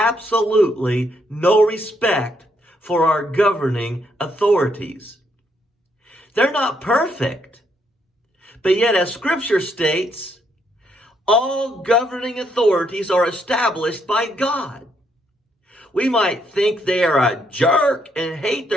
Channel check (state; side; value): normal; both; correlation 0.74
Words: no respect for our governing authorities. They're not perfect, but yet as Scripture states, all governing authorities are established by God. We might think they are a jerk and hate